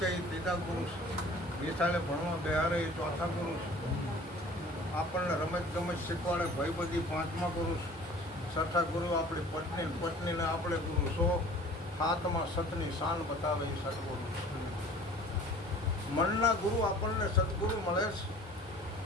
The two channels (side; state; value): both; normal; correlation 0.47